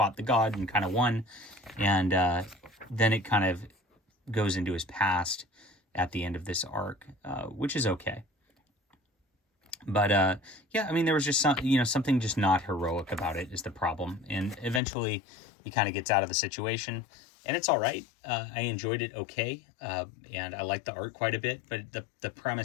the god and kind of won, and then it kind of goes into his past at the end of this arc, which is okay. But yeah, I mean, there was just something just not heroic about it is the problem. And eventually he kind of gets out of the situation, and it's all right. I enjoyed it okay, and I like the art quite a bit, but the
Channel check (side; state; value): right; drops out; at 14.8 s